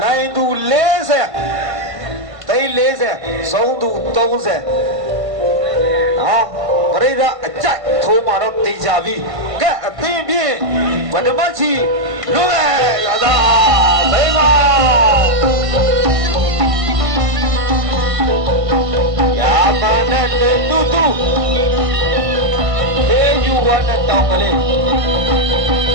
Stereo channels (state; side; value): late; left; 1.5 ms